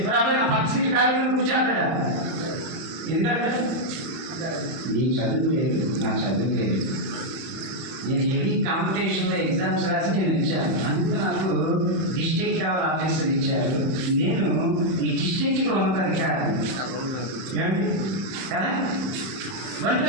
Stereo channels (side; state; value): left; late; 31 ms